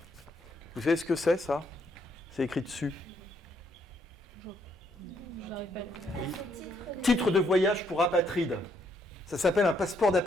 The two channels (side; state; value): both; normal; correlation 0.72